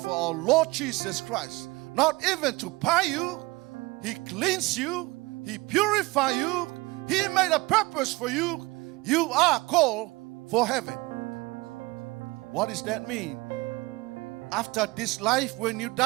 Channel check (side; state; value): left; quieter; 22.8 dB